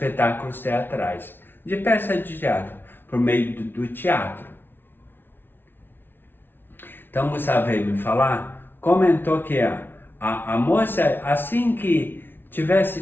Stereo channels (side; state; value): right; late; 0.10 ms